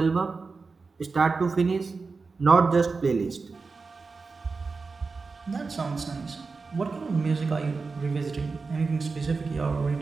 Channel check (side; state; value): left; quieter; 4.4 dB